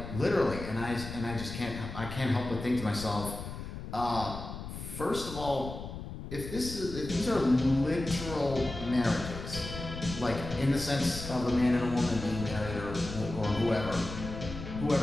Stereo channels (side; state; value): left; noise; rumble, 9 dB below the sound